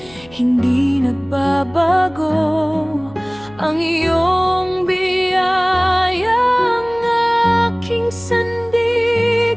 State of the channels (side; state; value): left; noise; hum, 23 dB below the sound